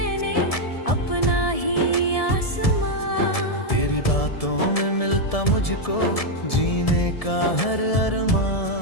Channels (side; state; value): right; late; 1.7 ms